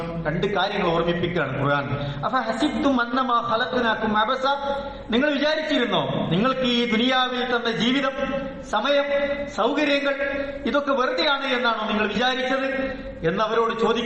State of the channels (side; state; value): both; identical; correlation 1.00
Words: രണ്ട് കാര്യങ്ങൾ ഓർമ്മിപ്പിക്കുകയാണ് ഖുർആൻ. അഫഹസിബ്തും അന്നമാ ഖലഖനാകും അബസ, നിങ്ങൾ വിചാരിച്ചിരുന്നോ നിങ്ങൾക്ക് ഈ ദുനിയാവിൽ തന്ന ജീവിതം, സമയം, സൗകര്യങ്ങൾ ഇതൊക്കെ വെറുതെയാണ് എന്നാണോ നിങ്ങൾ വിചാരിച്ചത് എന്നവരോട്